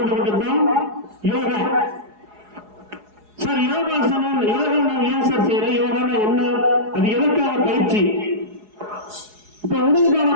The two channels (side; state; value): left; late; 4.8 ms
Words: யோகா. சார், யோகாசனம் யோகா நான் ஏன் சார் செய்யறேன்? யோகானா என்ன? அது எதற்கான பயிற்சி? இப்ப உடலுக்கான